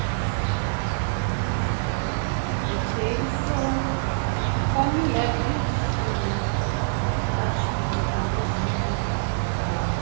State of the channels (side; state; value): left; silent; digital silence